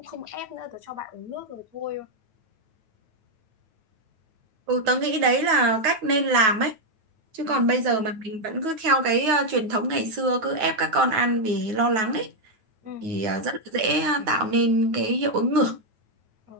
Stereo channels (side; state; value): left; late; 9.2 ms